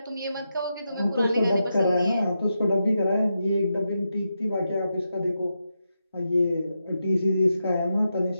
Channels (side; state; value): both; inverted; correlation -0.86